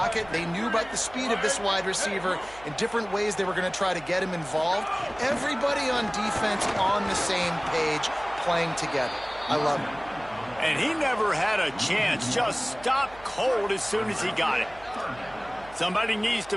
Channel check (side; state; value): right; noise; hum, 21 dB below the sound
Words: They knew about the speed of this wide receiver in different ways they were going to try to get him involved. Everybody on defense on the same page, playing together. I love it. And he never had a chance. Just stopped cold as soon as he got it. Somebody needs to